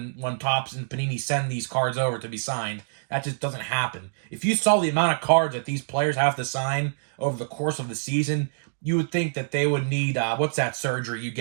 Topps and Panini send these cards over to be signed. That just doesn't happen. If you saw the amount of cards that these players have to sign over the course of the season, you would think that they would need what's that surgery you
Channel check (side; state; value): left; silent; digital silence